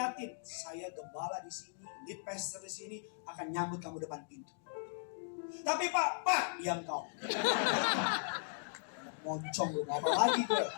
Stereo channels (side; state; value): right; silent; digital silence